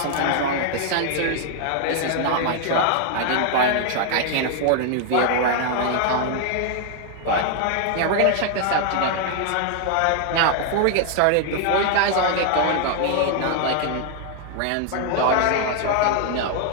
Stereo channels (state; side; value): different; both; correlation 0.00